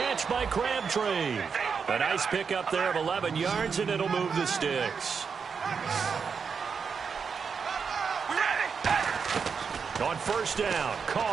by Crabtree. A nice pickup there of 11 yards, and it'll move the sticks. On 1st down,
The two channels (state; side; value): quieter; left; 5.9 dB